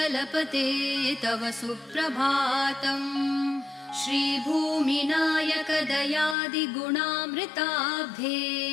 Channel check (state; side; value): drops out; right; at 6.4 s